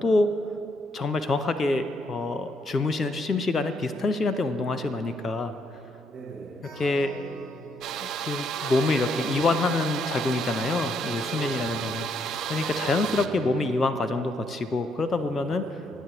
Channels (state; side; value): normal; both; correlation 0.73